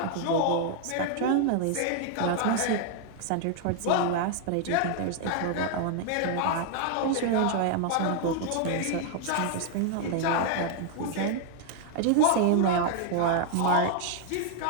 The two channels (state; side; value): different; both; correlation 0.00